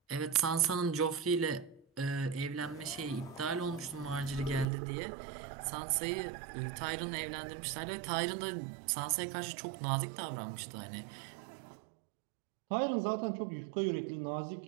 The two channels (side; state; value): left; drops out; at 4.7 s